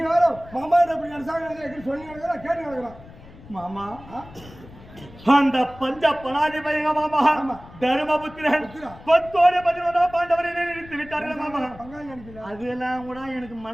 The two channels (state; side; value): noise; left; rumble, 19 dB below the sound